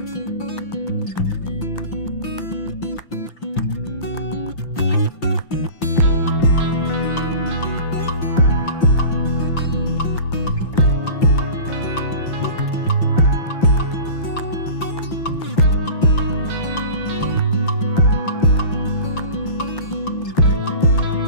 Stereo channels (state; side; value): late; right; 5.8 ms